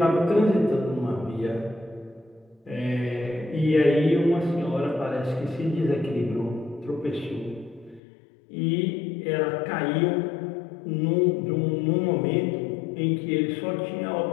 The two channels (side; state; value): right; drops out; at 8.0 s